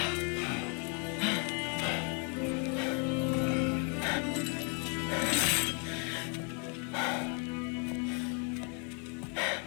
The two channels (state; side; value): quieter; right; 37.8 dB